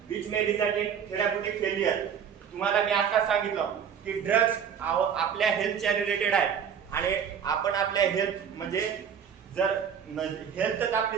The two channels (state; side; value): quieter; left; 7.8 dB